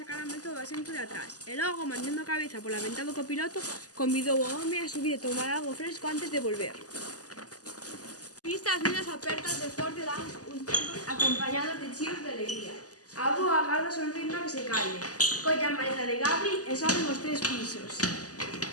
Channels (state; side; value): late; right; 0.67 ms